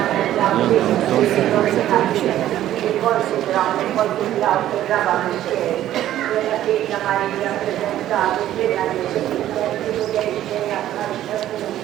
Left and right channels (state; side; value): quieter; left; 12.7 dB